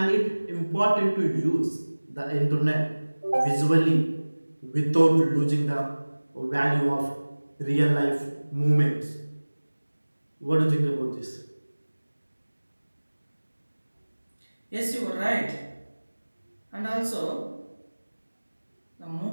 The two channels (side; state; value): both; inverted; correlation -1.00